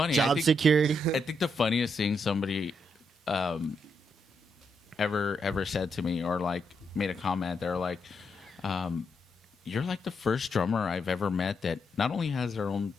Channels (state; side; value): normal; both; correlation 0.79